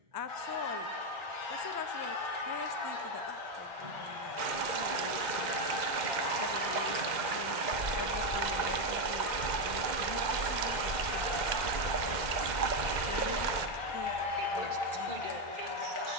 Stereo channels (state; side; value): late; left; 2.1 ms